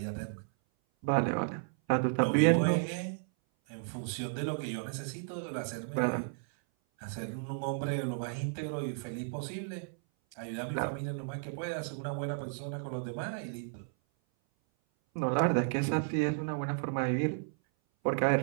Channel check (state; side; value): silent; left; 55 dB below the other